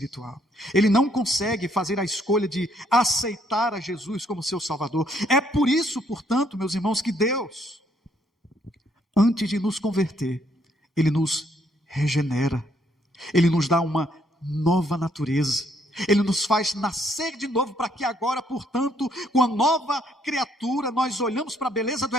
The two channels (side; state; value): both; normal; correlation 0.69